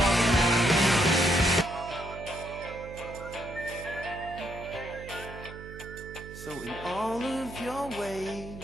So in all of your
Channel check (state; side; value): noise; right; hum, 14 dB below the sound